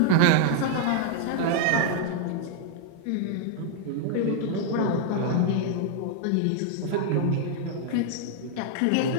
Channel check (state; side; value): different; both; correlation 0.00